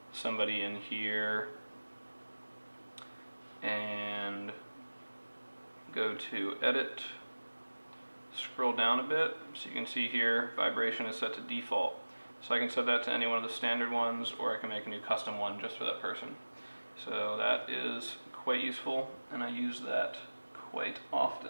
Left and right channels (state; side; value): inverted; both; correlation -1.00